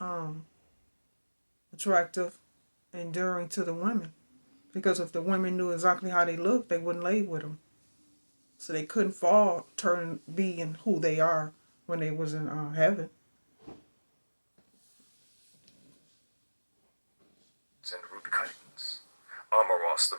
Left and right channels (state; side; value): inverted; both; correlation -1.00